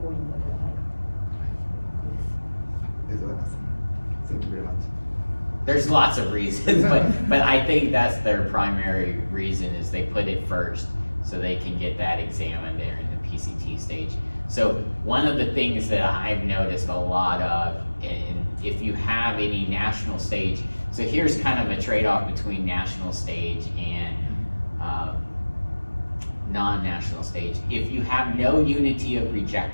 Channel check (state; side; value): inverted; both; correlation -1.00